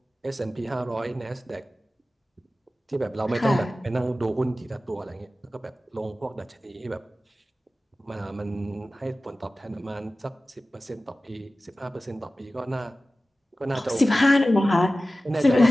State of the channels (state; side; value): normal; both; correlation 0.96